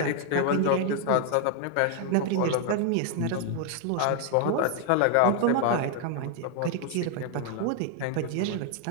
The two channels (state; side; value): different; both; correlation 0.00